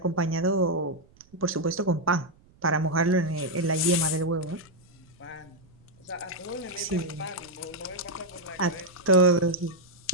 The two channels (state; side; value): noise; right; rumble, 29 dB below the sound